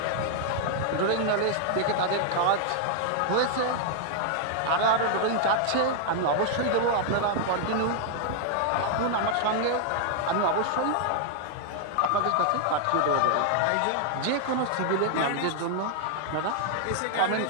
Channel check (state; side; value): different; both; correlation 0.00